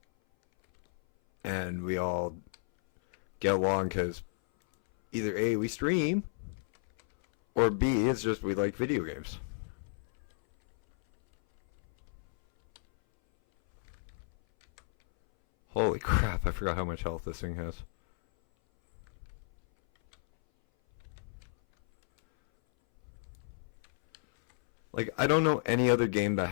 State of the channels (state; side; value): silent; right; 56 dB below the other